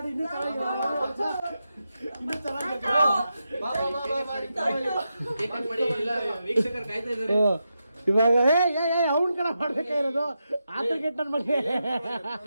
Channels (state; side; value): inverted; both; correlation -0.87